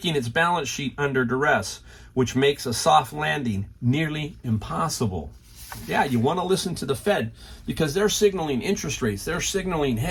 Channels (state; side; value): identical; both; correlation 1.00